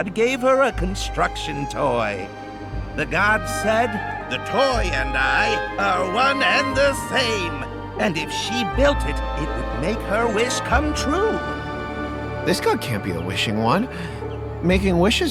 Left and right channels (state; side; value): identical; both; correlation 1.00